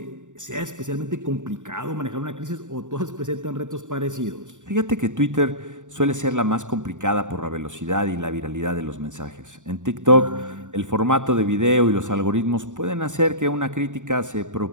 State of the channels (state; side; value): late; left; 0.86 ms